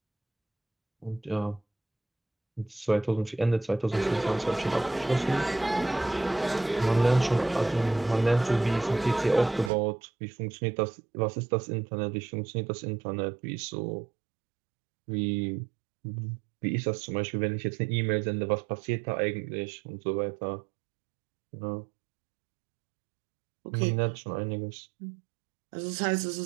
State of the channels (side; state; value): left; drops out; at 9.7 s